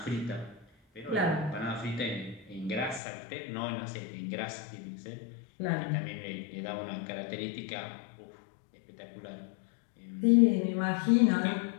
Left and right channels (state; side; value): drops out; right; at 3.0 s